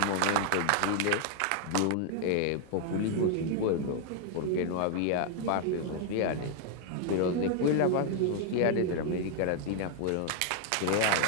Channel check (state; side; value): different; both; correlation 0.00